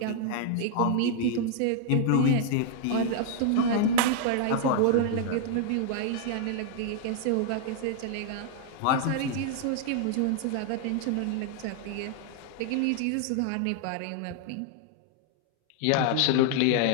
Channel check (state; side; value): different; both; correlation 0.00